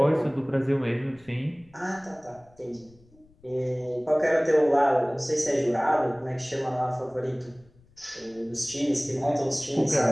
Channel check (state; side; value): noise; left; rumble, 30 dB below the sound